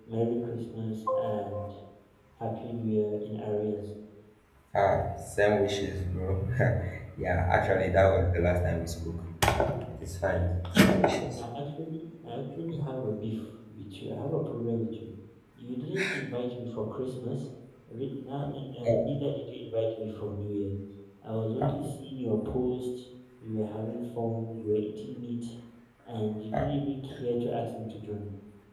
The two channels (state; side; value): identical; both; correlation 1.00